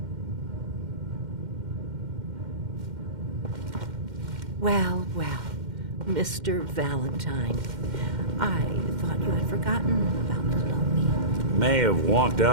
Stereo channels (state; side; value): late; left; 2.1 ms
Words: Well, well, Mr. Valentine. I thought you had forgotten about Lomi. May have walked